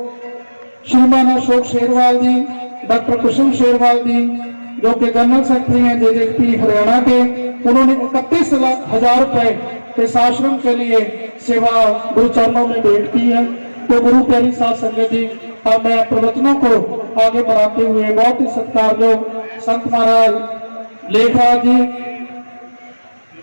श्रीमान अशोक शेरवाल जी, डॉक्टर कुसुम शेरवाल जी जो कि जनरल सेक्रेटरी हैं जेजेपी हरियाणा के, उन्होंने 31,00,000 रुपए इस आश्रम के लिए सेवा गुरु चरणों में भेंट की है। तो गुरु प्यारी साध संगत जी, अब मैं प्रवचनों को आगे बढ़ाते हुए बहुत ही सत्कारयोग संत महाराज लेखराज जी,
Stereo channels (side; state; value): both; inverted; correlation -1.00